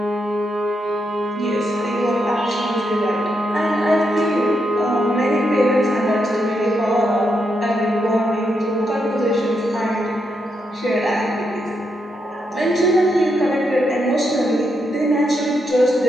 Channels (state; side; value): normal; both; correlation 0.81